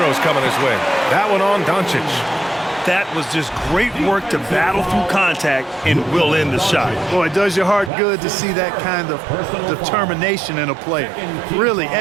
coming his way. That one on Doncic. That was just great work to battle through contact and will end the shot. Boy, it does your heart good to see that kind of determination in a player. Really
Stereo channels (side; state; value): left; drops out; at 7.9 s